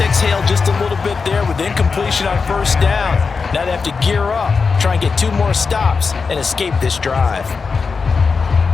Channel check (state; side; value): quieter; right; 4.9 dB